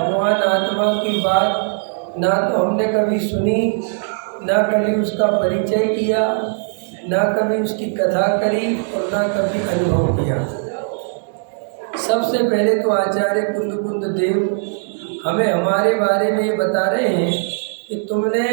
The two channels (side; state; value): left; silent; digital silence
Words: आत्मा की बात ना तो हमने कभी सुनी, ना कभी उसका परिचय किया, ना कभी उसकी कथा करी और ना कभी अनुभव किया। सबसे पहले तो आचार्य कुंद देव हमें हमारे बारे में ये बता रहे हैं कि तुमने